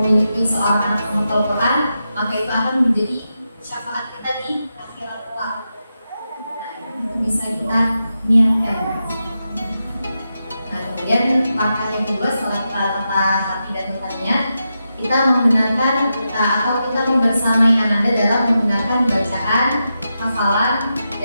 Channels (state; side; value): inverted; both; correlation -0.88